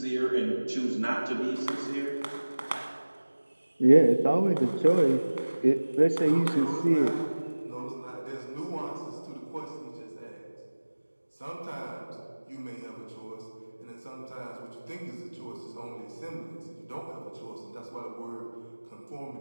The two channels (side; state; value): both; inverted; correlation -1.00